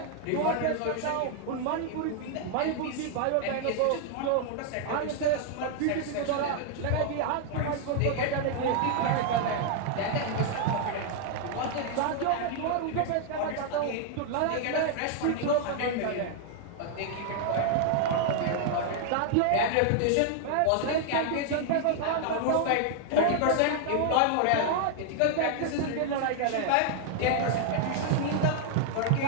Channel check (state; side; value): different; both; correlation 0.00